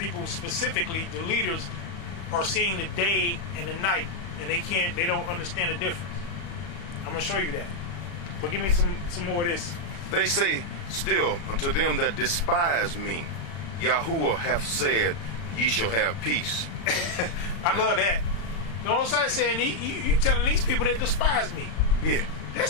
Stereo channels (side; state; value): right; late; 35 ms